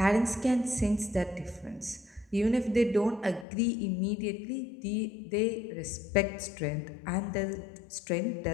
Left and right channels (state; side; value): drops out; right; at 3.5 s